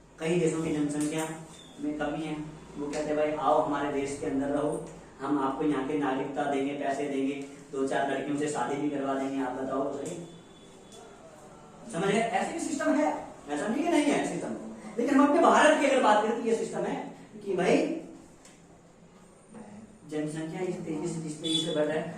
कई देशों की जनसंख्या में कमी है, वो कहते हैं भाई आओ हमारे देश के अंदर रहो, हम आपको यहाँ की नागरिकता देंगे, पैसे देंगे, 2-4 लड़कियों से शादी भी करवा देंगे, आप बताओ तो सही। समझ गए, ऐसे सिस्टम है, ऐसा नहीं कि नहीं है सिस्टम। लेकिन हम अपने भारत की अगर बात करें तो ये सिस्टम है कि भाई जनसंख्या इस तेजी से बढ़ रहा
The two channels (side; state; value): both; identical; correlation 1.00